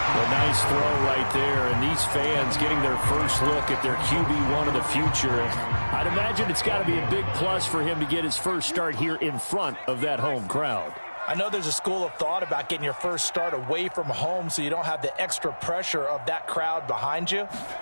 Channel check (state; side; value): inverted; both; correlation -1.00